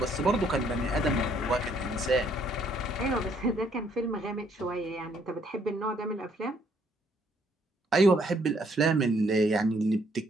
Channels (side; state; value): both; normal; correlation 0.67